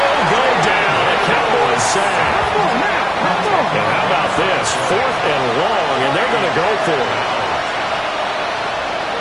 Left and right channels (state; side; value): identical; both; correlation 1.00